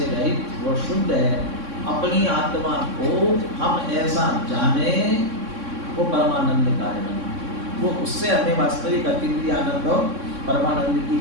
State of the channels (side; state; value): left; late; 3.6 ms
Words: रहित, वो शुद्ध है। अपनी आत्मा को हम ऐसा जाने, वो परमानंद कारण, वो उससे हमें वास्तविक अतीन्द्रिय आनंद और परमानंद